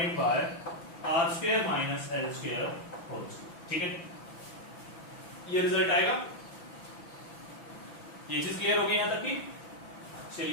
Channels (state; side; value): late; right; 5.9 ms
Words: by r square minus l square whole square. ठीक है, ये रिजल्ट आएगा। ये चीज क्लियर हो गई यहां तक की?